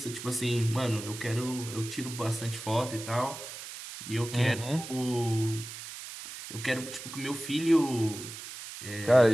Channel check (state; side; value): noise; right; hiss, 11 dB below the sound